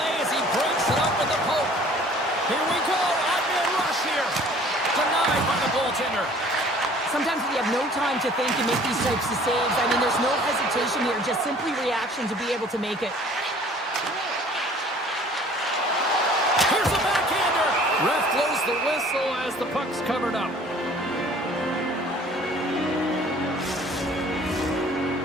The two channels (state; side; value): normal; both; correlation 0.52